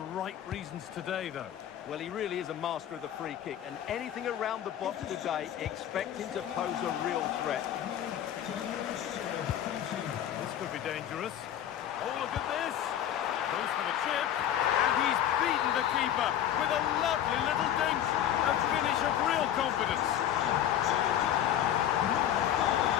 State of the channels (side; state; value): right; quieter; 10.8 dB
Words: reasons today, though? Well, he really is a master of the free kick, and anything around the box today, expect him to pose a real threat. This could be dangerous. Oh, look at this! Goes for the chip, and he's beaten the keeper with a lovely little dink. A finish of real confidence.